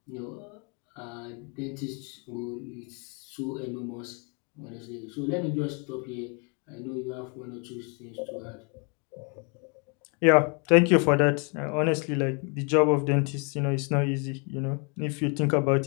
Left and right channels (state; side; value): quieter; right; 35.6 dB